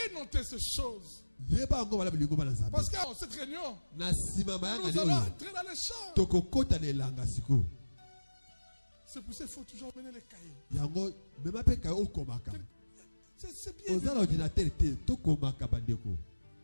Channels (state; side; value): inverted; both; correlation -1.00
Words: noter ces choses. Parce qu'à cette réunion, nous allons entrer dans les champs. C'est pour ça qu'il faut toujours mener les cahiers. C'est bien.